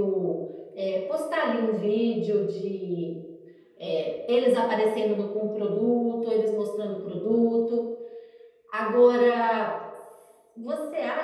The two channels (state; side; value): identical; both; correlation 1.00